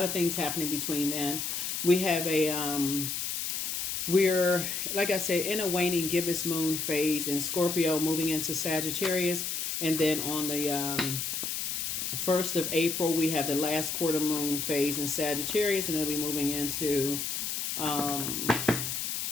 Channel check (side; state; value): left; noise; hiss, 2 dB below the sound